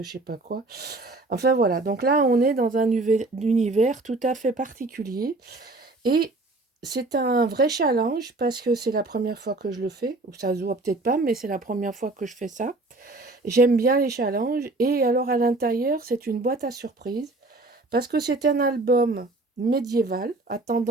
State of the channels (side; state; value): left; quieter; 3.0 dB